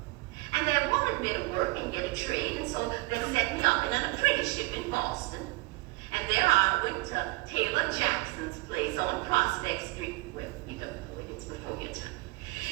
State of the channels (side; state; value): left; quieter; 23.0 dB